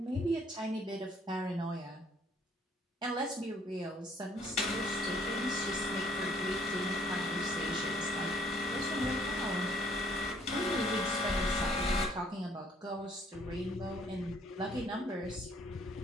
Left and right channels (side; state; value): both; normal; correlation 0.62